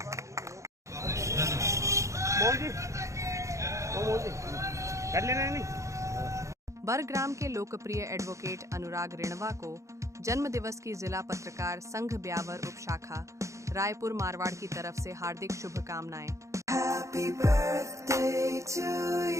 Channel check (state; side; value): late; left; 0.15 ms